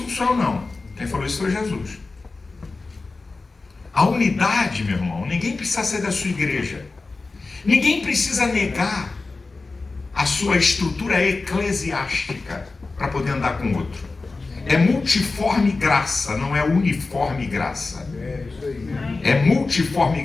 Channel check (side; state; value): right; quieter; 3.7 dB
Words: não sou eu, não. Quem falou isso foi Jesus. A unidade, meu irmão, ninguém precisa ser da sua igreja. Ninguém precisa negar a sua estrutura eclesiástica para poder andar com o outro. É multiforme graça, não é uniforme graça. É multiforme